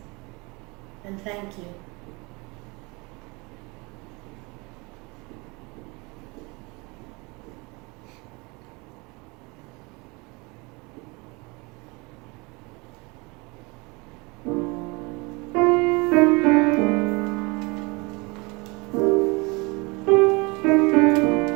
and thank you.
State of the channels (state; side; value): quieter; left; 27.0 dB